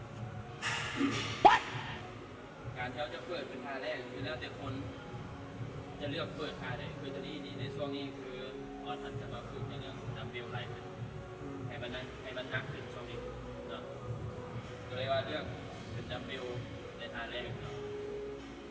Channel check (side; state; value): both; identical; correlation 1.00